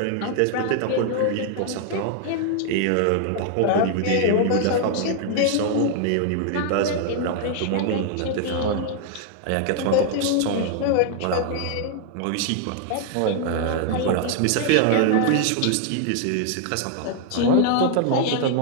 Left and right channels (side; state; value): both; different; correlation 0.00